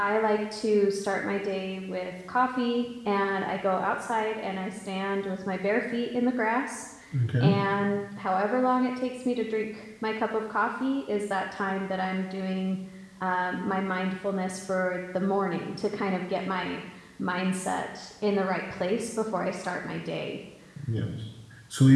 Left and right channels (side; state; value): both; identical; correlation 1.00